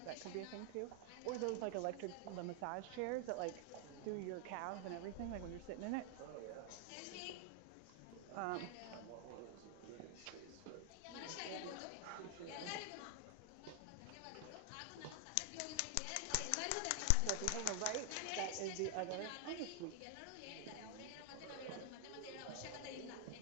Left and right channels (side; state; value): both; different; correlation 0.00